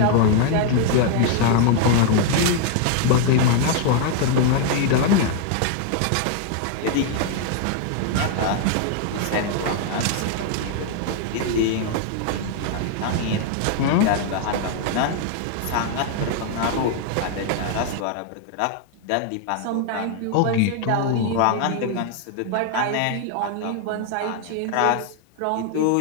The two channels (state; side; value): different; both; correlation 0.00